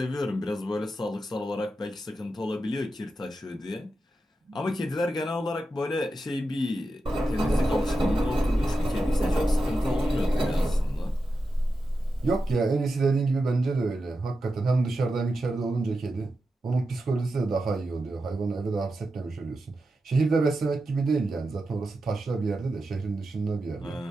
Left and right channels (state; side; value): normal; both; correlation 0.90